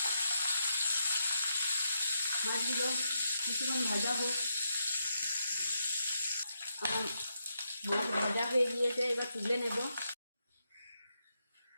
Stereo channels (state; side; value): inverted; both; correlation -0.82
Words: মাছগুলো কিছুক্ষণ ভাজা হোক। আমার মাছ ভাজা হয়ে গিয়েছে, এবার তুলে নেব।